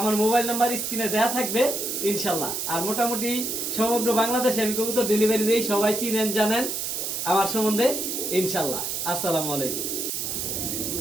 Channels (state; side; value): noise; right; hiss, 2 dB below the sound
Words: মোবাইল নাম্বার স্ক্রিনে দেওয়া থাকবে ইনশাল্লাহ। আর মোটামুটি সমগ্র বাংলাদেশে আমি কবুতর ডেলিভারি দিই, সবাই চিনেন জানেন আমার সম্বন্ধে ইনশাল্লাহ। আসসালামু আলাইকুম।